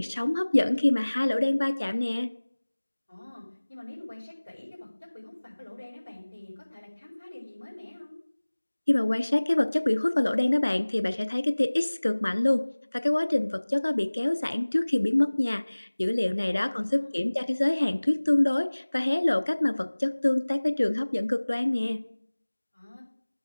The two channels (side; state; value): both; inverted; correlation -1.00